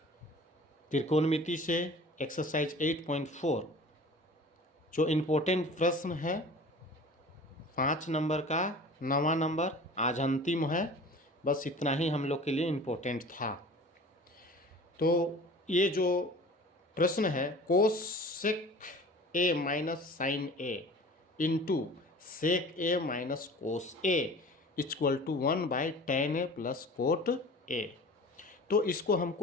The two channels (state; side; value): normal; both; correlation 0.42